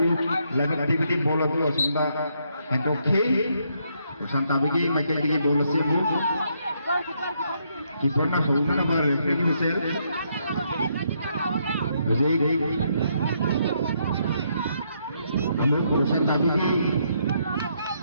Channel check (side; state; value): both; inverted; correlation -0.75